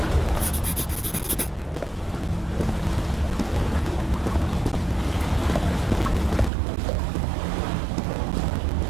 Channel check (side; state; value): left; drops out; at 6.5 s